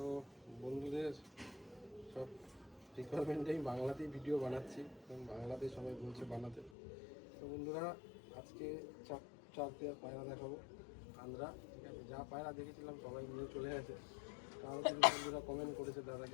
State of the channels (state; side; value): drops out; right; at 6.7 s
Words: বন্ধুদের সব রিকোয়ারমেন্টেই বাংলাতেই ভিডিও বানাচ্ছি, কারণ বাংলাতে সবাই বলছে বানাতে। তো বন্ধুরা, আজকে চার পেয়ার পায়রা দেখাবো আন্দ্রা। ঠিক আছে, যা পায়রা দেখেছিলাম সবাই নিয়ে চলে গেছে। আরও কিছু বন্ধুরা কমেন্ট করেছে দাদা